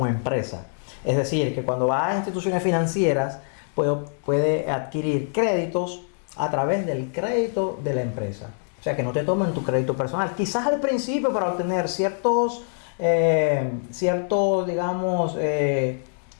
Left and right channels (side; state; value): right; silent; 62 dB below the other